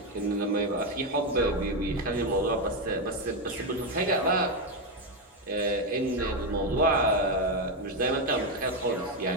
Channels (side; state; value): both; normal; correlation 0.08